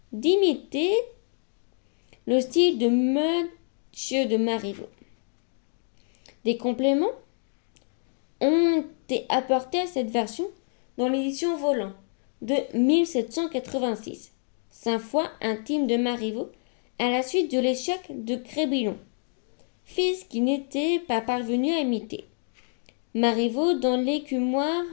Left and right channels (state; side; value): silent; right; 60 dB below the other